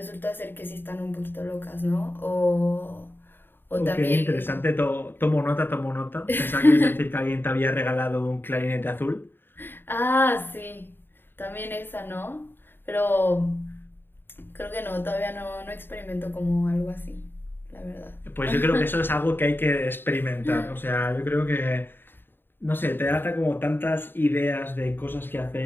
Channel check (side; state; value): right; late; 0.098 ms